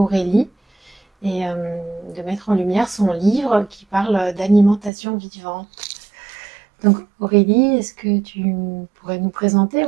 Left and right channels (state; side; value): drops out; left; at 4.9 s